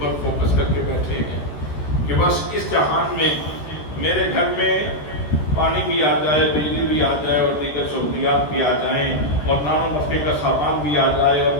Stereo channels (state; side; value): late; right; 13 ms